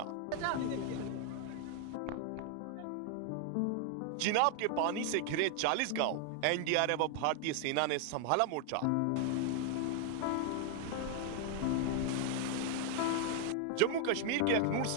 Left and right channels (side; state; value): both; different; correlation 0.00